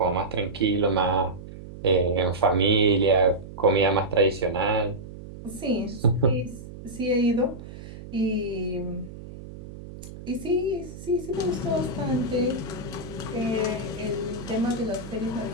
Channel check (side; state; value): right; noise; hum, 14 dB below the sound